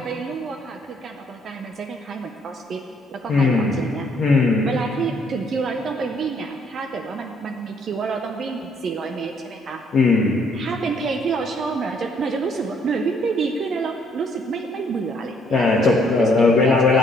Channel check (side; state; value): both; normal; correlation 0.66